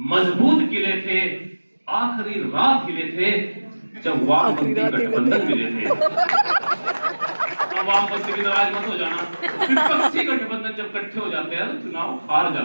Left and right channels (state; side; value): inverted; both; correlation -1.00